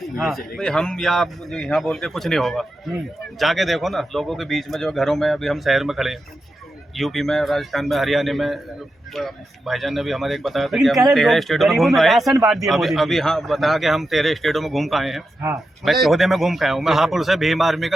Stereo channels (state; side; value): normal; both; correlation 0.89